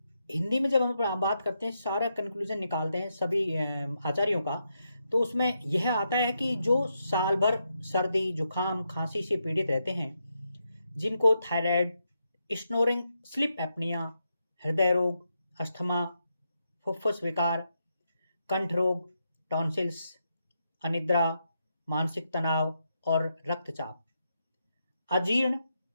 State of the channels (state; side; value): inverted; both; correlation -0.83